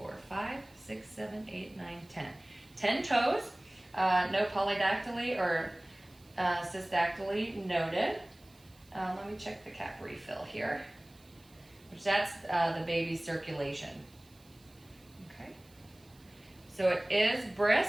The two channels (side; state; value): right; noise; hiss, 28 dB below the sound